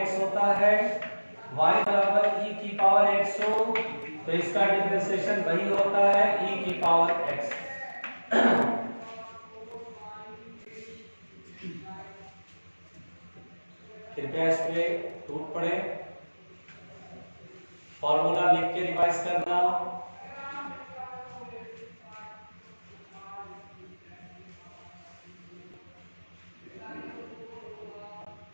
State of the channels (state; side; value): inverted; both; correlation -1.00